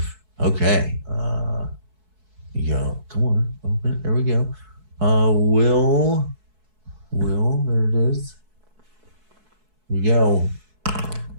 Okay. Come on. Open it. There we go. Will. There it is. Here we go.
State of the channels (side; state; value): left; late; 4.6 ms